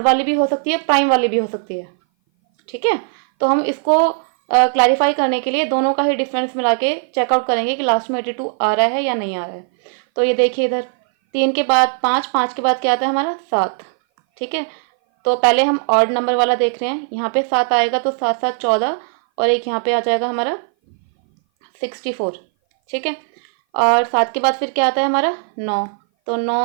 वाली भी हो सकती है, प्राइम वाली भी हो सकती है। ठीक है, तो हम इसको क्लैरिफाई करने के लिए दोनों का ही डिफरेंस मिला के चेकआउट करेंगे कि लास्ट में 82 आ रहा है या नहीं आ रहा है। तो ये देखिए इधर 3 के बाद 5, 5 के बाद क्या आता है हमारा 7। ठीक है, तो पहले हम ऑड नंबर वाला देख रहे हैं। यहाँ पे 7 आएगा तो 7 7 14, और एक यहाँ पे आ जाएगा हमारा 64। ठीक है, और 7 के बाद फिर क्या आता है हमारा 9। तो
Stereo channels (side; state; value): left; silent; 59 dB below the other